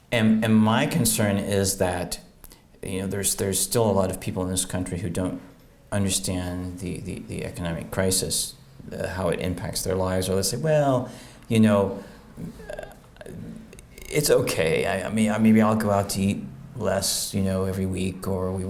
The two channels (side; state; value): both; identical; correlation 1.00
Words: And my concern is that, there's still a lot of people in this country who don't understand the economic crisis, how it impacts their lives, or they say, well, it's okay. Maybe I'll go out to eat less, every week, or we